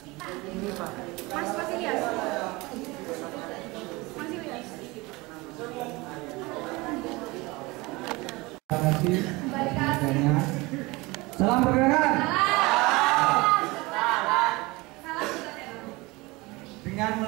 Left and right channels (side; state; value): left; quieter; 23.2 dB